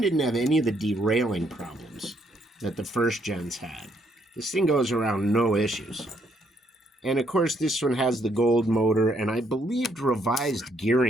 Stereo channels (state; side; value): normal; both; correlation 0.71